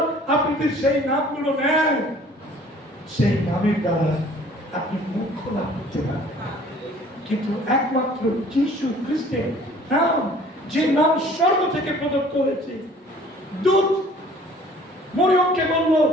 আপনি যদি সেই নামগুলো নেন, সেই নামের দ্বারা আপনি মুক্তি লাভ করতে পারবেন। কিন্তু একমাত্র যিশু খ্রিস্টের নাম, যে নাম স্বর্গ থেকে প্রদত্ত হয়েছে। দূত মরিয়মকে বলল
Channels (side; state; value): both; normal; correlation 0.52